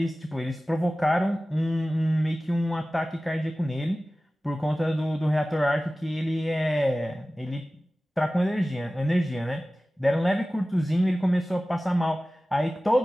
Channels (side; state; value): both; normal; correlation 0.97